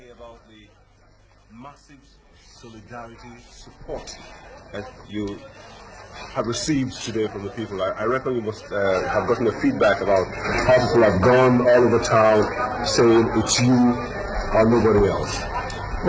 about the massive solidarity support that you have received today from the people? I reckon you must have gotten a feedback about how people have gone all over town saying it's you or nobody else.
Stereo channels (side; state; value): both; identical; correlation 1.00